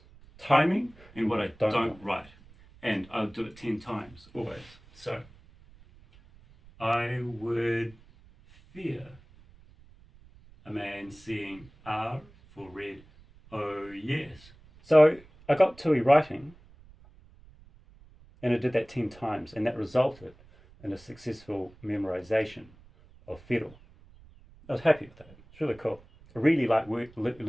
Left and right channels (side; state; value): right; noise; rumble, 25 dB below the sound